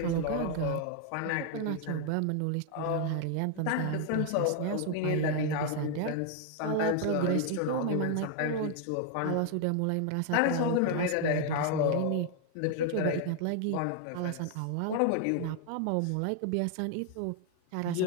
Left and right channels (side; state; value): both; different; correlation 0.00